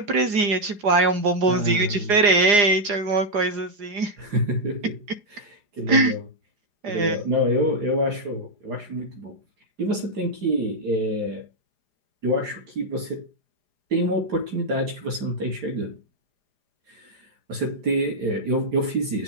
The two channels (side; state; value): left; late; 4.9 ms